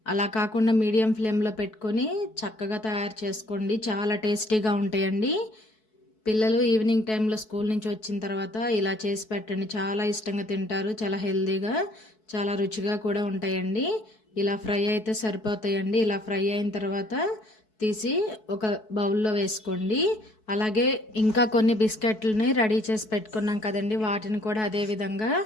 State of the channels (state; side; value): late; right; 4.6 ms